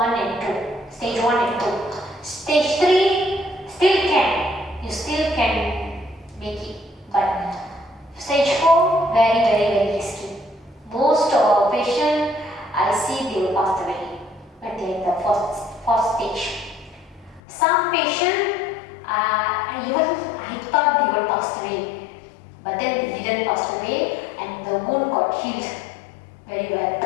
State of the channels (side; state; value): right; drops out; at 17.4 s